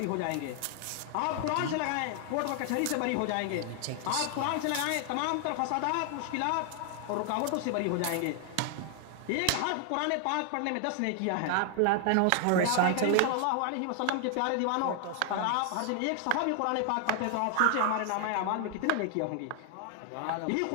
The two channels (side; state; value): both; different; correlation 0.00